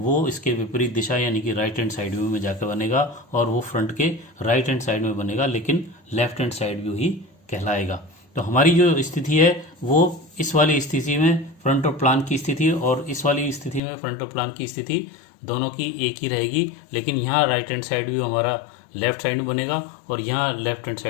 इसके विपरीत दिशा यानी कि राइट हैंड साइड व्यू में जाकर बनेगा और वो फ्रंट के राइट हैंड साइड में बनेगा, लेकिन लेफ्ट हैंड साइड व्यू ही कहलाएगा। तो हमारी जो स्थिति है वो इस वाली स्थिति में फ्रंट और प्लान की स्थिति और इस वाली स्थिति में फ्रंट और प्लान की स्थिति दोनों की एक ही रहेगी, लेकिन यहाँ राइट हैंड साइड व्यू हमारा लेफ्ट साइड में बनेगा और यहाँ लेफ्ट हैंड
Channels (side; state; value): right; drops out; at 13.8 s